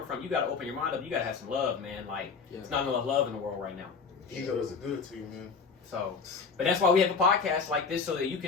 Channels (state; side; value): quieter; right; 5.3 dB